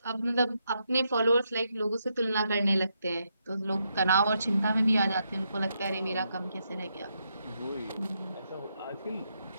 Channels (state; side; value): inverted; both; correlation -0.80